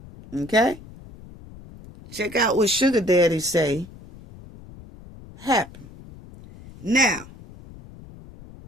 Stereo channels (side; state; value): left; noise; rumble, 19 dB below the sound